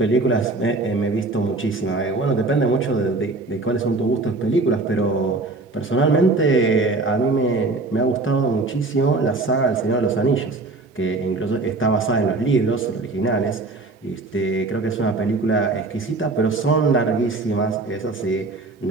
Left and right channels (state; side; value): quieter; left; 3.3 dB